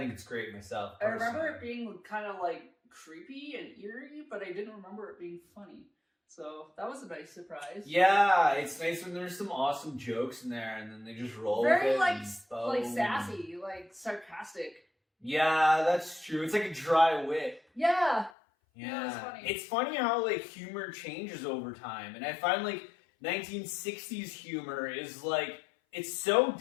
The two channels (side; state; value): right; drops out; at 18.3 s